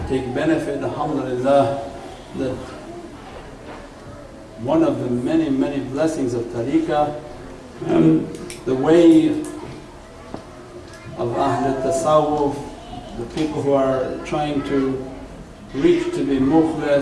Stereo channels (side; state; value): both; identical; correlation 1.00